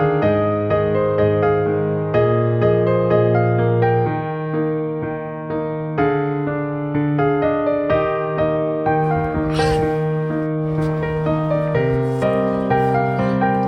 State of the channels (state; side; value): identical; both; correlation 1.00